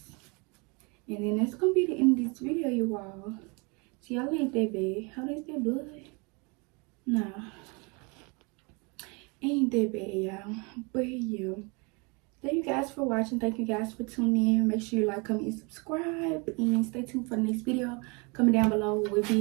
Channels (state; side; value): quieter; left; 30.5 dB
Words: And then that's gonna be the end of this video, you all. See, y'all ain't that bad. How is that blood? Nah. Ain't that bad, y'all. But yeah. Thank you guys for watching. Thank you guys for tuning in. Make sure you like, comment, and subscribe. And stay tuned for the next video. Comment down below what